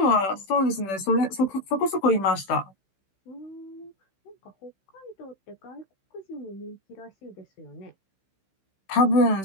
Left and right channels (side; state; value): right; late; 16 ms